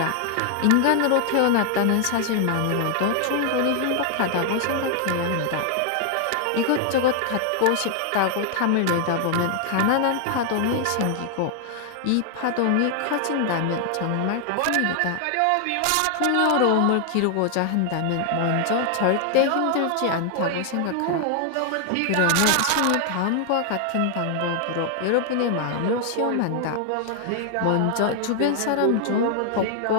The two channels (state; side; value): different; both; correlation 0.00